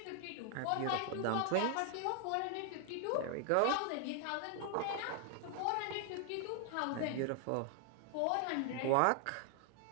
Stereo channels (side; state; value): both; different; correlation 0.00